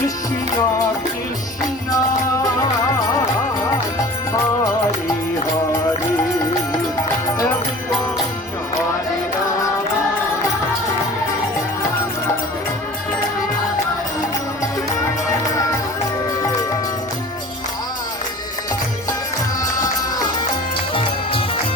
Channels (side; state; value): both; normal; correlation 0.42